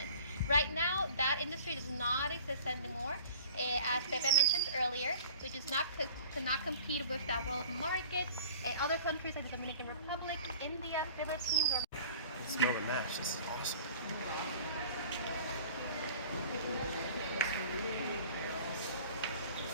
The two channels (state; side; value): inverted; both; correlation -0.45